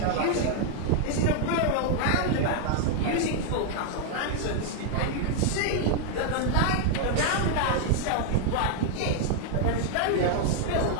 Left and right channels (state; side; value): different; both; correlation 0.00